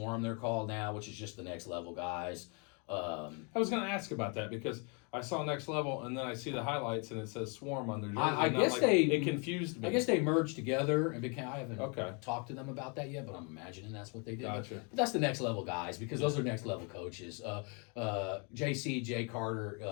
they're called now, which is just the next level guys. I was going to ask about that because I saw Next Level and then I see the highlights and it says Swarm on their jersey. It confused me. I guess they merged together and became. I haven't Okay. talked to them about that yet, but I'm imagining that's what they did. Gotcha. But that's the next level guys because those are next level coaches. Jay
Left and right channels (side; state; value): right; quieter; 34.7 dB